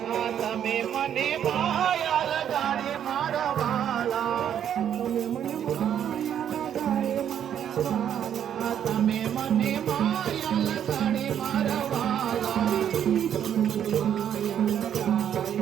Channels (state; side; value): quieter; left; 9.4 dB